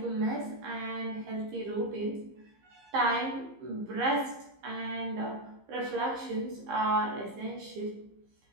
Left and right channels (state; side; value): late; left; 15 ms